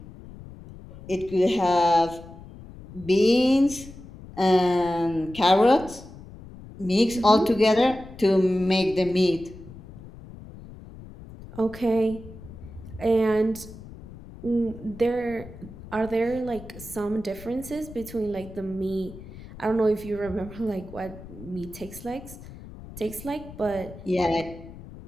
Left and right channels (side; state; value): left; noise; rumble, 16 dB below the sound